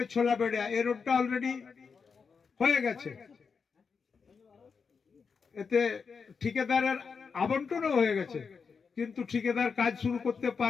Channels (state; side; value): quieter; right; 5.6 dB